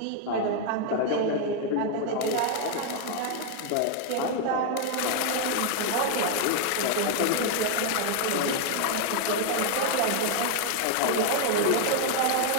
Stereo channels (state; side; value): different; both; correlation 0.00